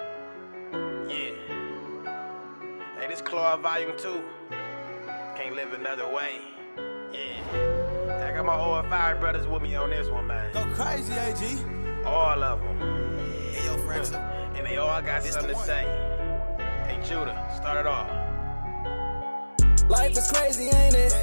Yeah. Hey, this Claw Volume 2. Can't live another way. Yeah. I got my O.F.I brothers with me on this one, man. Go crazy, AG. All of them. Hey, yo, Fraxel. And they all got something to say. Hey, Judah, start it off. Life is crazy, ain't it?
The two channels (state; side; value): inverted; both; correlation -1.00